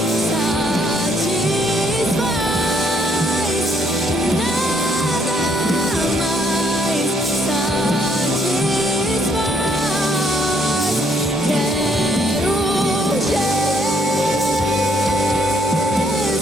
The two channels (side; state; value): both; normal; correlation 0.69